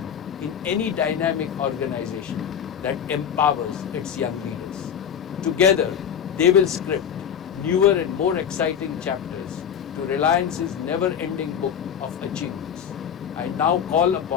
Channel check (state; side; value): quieter; right; 8.4 dB